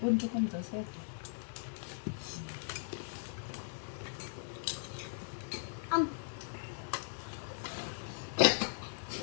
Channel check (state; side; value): silent; right; digital silence